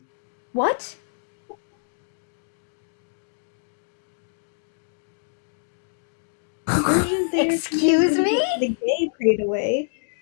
What? Conversion therapy. Excuse me? The gay prayed away.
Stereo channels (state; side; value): silent; right; digital silence